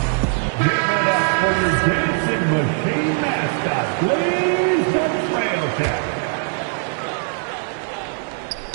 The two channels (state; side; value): silent; left; 56 dB below the other